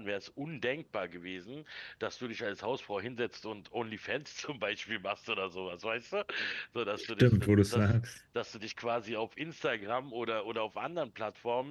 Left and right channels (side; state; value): both; identical; correlation 1.00